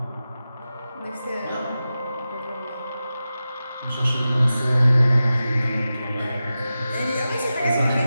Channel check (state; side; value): inverted; both; correlation -0.93